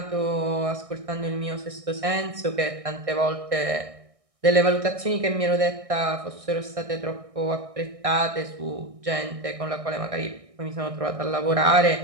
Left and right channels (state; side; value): late; left; 1.6 ms